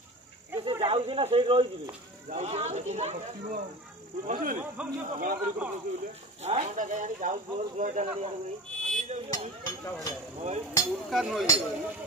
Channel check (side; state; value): both; normal; correlation 0.34